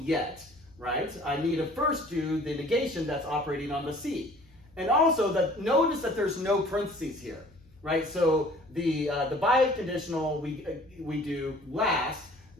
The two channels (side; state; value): left; noise; hum, 28 dB below the sound